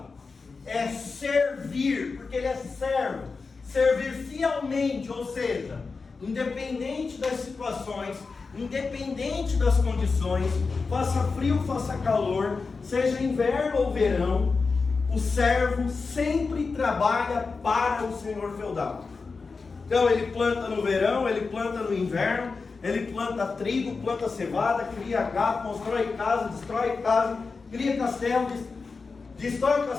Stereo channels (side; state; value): right; quieter; 4.5 dB